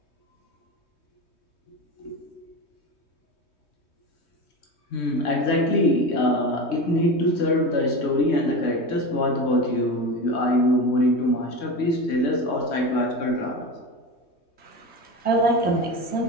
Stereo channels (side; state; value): right; late; 3.2 ms